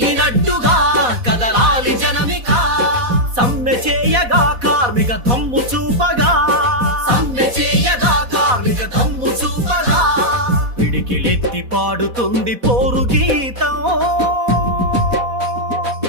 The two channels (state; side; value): late; left; 4.1 ms